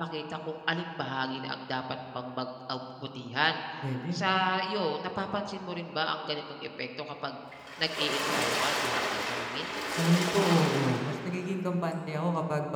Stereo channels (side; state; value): both; identical; correlation 1.00